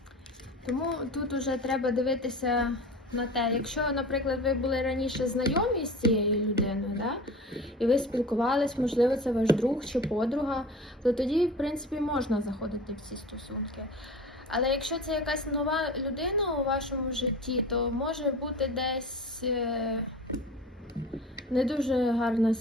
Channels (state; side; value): normal; both; correlation 0.36